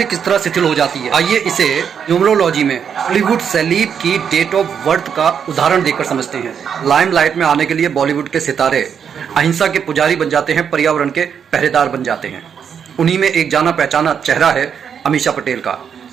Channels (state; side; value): quieter; left; 7.5 dB